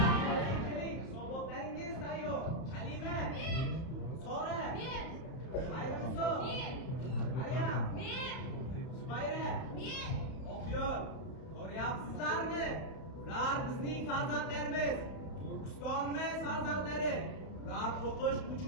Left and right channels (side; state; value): right; late; 32 ms